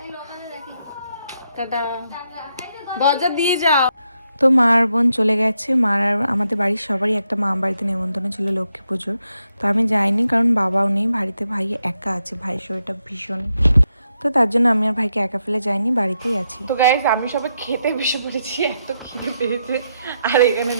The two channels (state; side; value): inverted; both; correlation -0.81